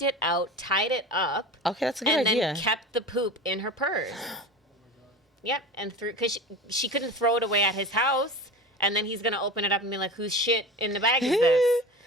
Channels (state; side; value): normal; both; correlation 0.32